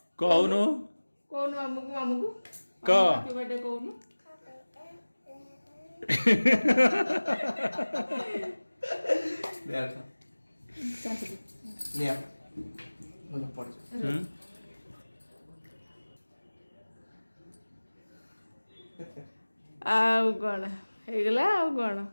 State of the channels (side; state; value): both; inverted; correlation -1.00